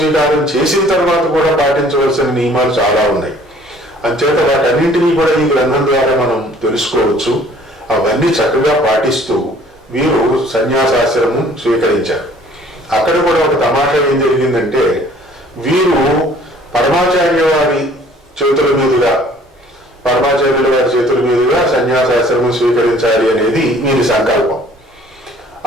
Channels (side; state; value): both; normal; correlation 0.55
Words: చేసిన తర్వాత కూడా పాటించవలసిన నియమాలు చాలా ఉన్నాయి. అంచేత వాటన్నింటినీ కూడా ఈ గ్రంథం ద్వారా మనం తెలుసుకోవచ్చు. అవన్నీ చక్కగా పాటిస్తూ వీరు సన్యాసాశ్రమం స్వీకరించారు. అక్కడ కూడా ఒక తమాషా ఏం జరిగిందంటే, వీరు పరమాచార్యుల వారి చేతుల మీదుగా సన్యాసాశ్రమం స్వీకరించాలి అనేది వీరి సంకల్పం.